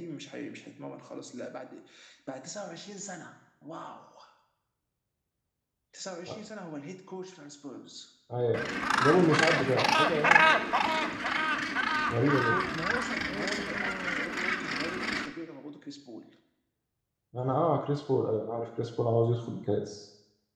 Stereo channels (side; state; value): both; identical; correlation 1.00